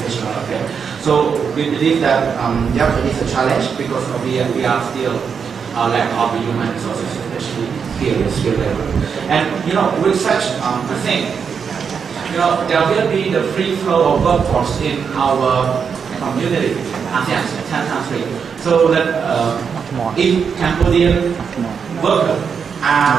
affair. So we believe that it is a challenge because we are still lack of human resources, especially here in skill level. And with such a thing, there will be the free flow of workforce in our community, ASEAN 10 countries. So that if Cambodian workers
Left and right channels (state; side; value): quieter; left; 6.5 dB